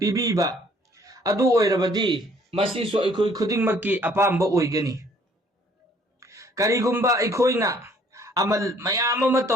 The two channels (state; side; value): normal; both; correlation 0.60